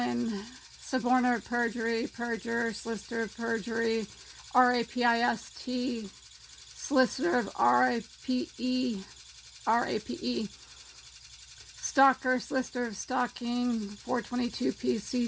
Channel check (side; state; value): both; identical; correlation 1.00